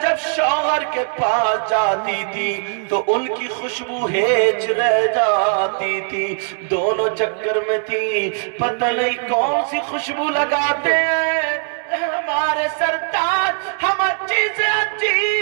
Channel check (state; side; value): silent; left; 63 dB below the other